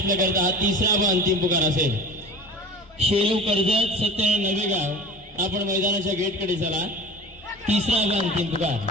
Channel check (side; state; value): both; normal; correlation 0.37